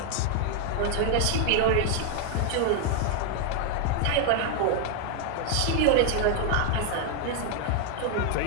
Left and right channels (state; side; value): different; both; correlation 0.00